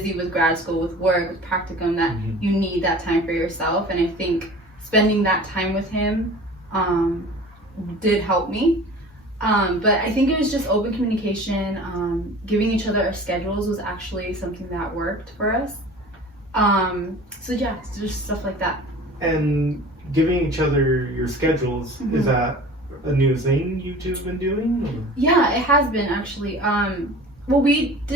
with grad school, with work, with practicum, that you need that time for yourself. And I think spending that time with him did help me. But I think it was just open communication. Giving each other our schedules was actually something that worked for us. So yeah, it's just stuff like that. And giving each other your schedules, is that a new thing you two have been doing? Or? Yeah, it has been actually. Well, we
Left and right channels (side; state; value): both; normal; correlation 0.41